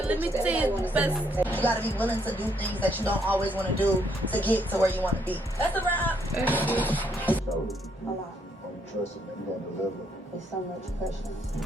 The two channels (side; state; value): both; normal; correlation 0.71